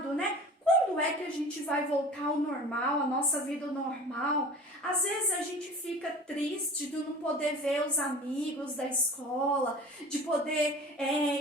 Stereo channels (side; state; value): both; normal; correlation 0.40